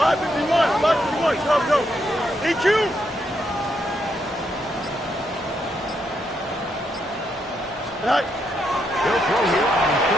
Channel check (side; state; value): both; normal; correlation 0.78